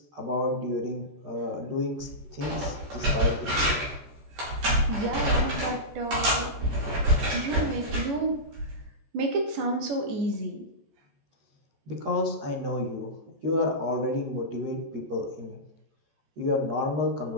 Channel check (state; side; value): late; left; 14 ms